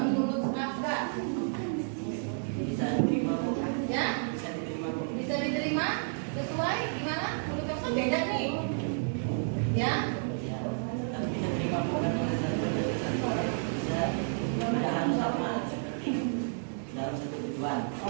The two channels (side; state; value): left; silent; 57 dB below the other